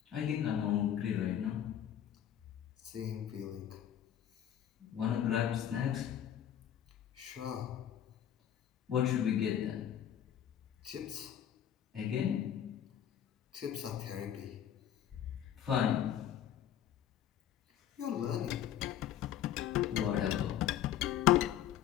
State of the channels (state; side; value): quieter; right; 10.5 dB